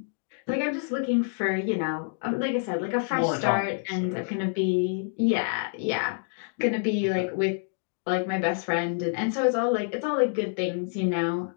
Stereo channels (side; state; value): right; silent; digital silence